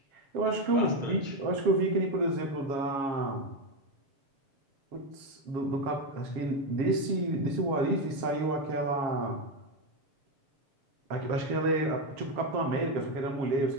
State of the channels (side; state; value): left; late; 7.4 ms